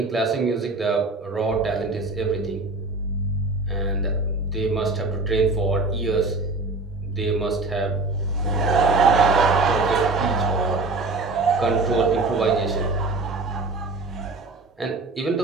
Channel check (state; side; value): quieter; left; 3.5 dB